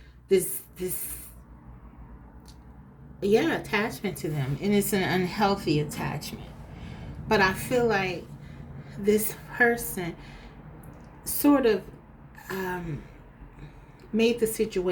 attachment to them, and it's an unhealthy attachment. But I feel like this person sort of made the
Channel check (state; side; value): identical; both; correlation 1.00